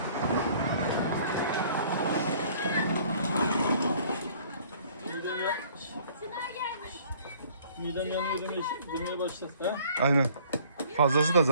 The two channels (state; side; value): inverted; both; correlation -0.56